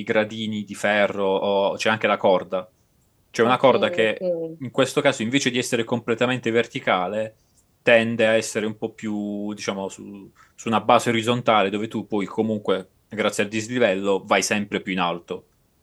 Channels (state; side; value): identical; both; correlation 1.00